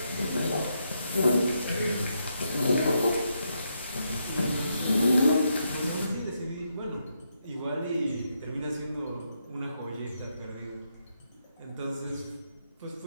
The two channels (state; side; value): inverted; both; correlation -0.80